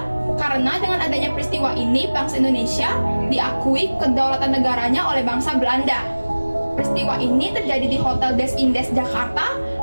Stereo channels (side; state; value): both; inverted; correlation -1.00